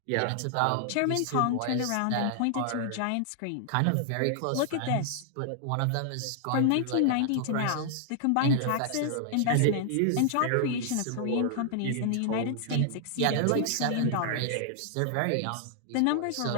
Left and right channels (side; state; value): both; different; correlation 0.00